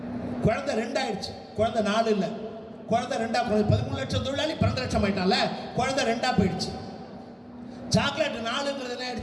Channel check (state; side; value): identical; both; correlation 1.00